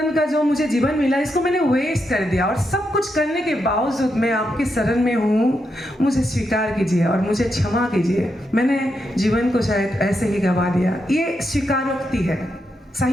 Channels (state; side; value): normal; both; correlation 0.83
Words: का जो मुझे जीवन मिला इसको मैंने वेस्ट कर दिया, और सब कुछ करने के बावजूद मैं आपकी शरण में हूँ, मुझे स्वीकार कीजिए और मुझे क्षमा कीजिए। मैंने जीवन को शायद ऐसे ही गवा दिया। ये स्वीकारोक्ति है,